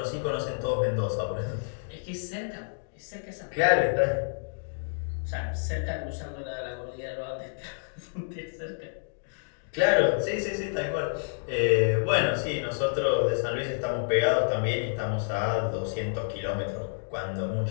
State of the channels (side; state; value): right; silent; digital silence